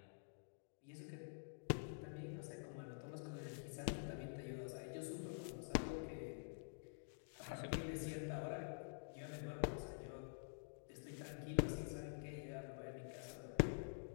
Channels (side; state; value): right; silent; digital silence